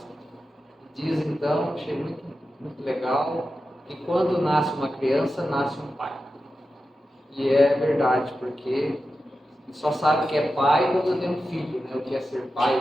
diz então, achei muito, muito legal, que quando nasce uma criança, nasce um pai. E é verdade, porque só sabe que é pai quando tem um filho, né? O que é ser pai,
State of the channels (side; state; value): both; normal; correlation 0.91